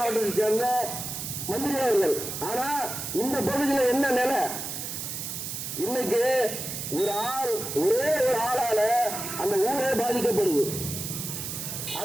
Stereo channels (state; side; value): noise; right; hiss, 6 dB below the sound